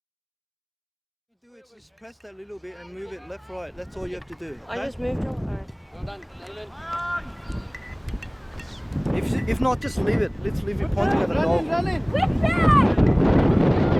Do it, just press that little bit and move it left, right. That's all you have to do. I just moved it. Alright. Well done. If not, just leave it. Let's leave it pointing at the goal. Damien!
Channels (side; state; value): both; identical; correlation 1.00